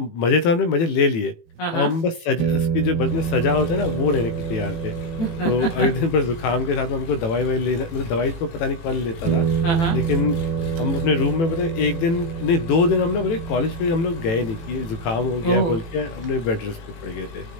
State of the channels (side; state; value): right; late; 18 ms